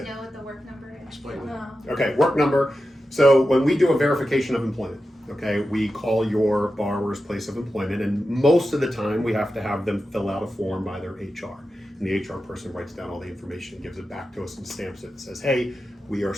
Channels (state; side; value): normal; both; correlation 0.91